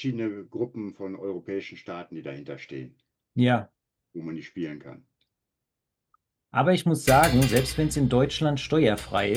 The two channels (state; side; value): identical; both; correlation 1.00